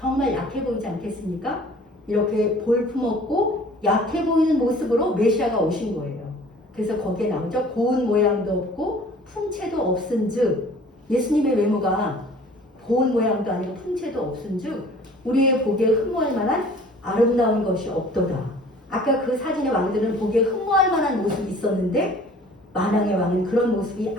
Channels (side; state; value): both; normal; correlation 0.49